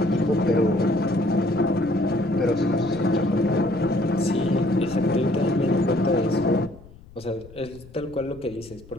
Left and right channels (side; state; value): left; noise; rumble, 21 dB below the sound